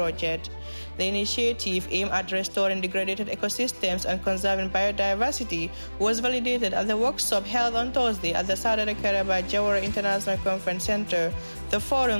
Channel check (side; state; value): both; inverted; correlation -1.00